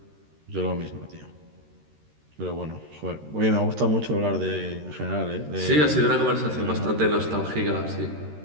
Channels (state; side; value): late; left; 13 ms